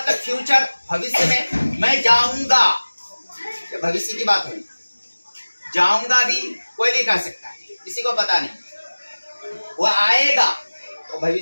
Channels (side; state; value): both; inverted; correlation -1.00